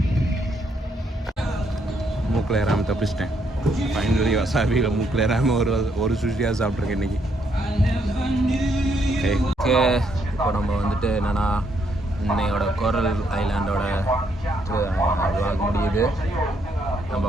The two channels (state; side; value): normal; both; correlation 0.74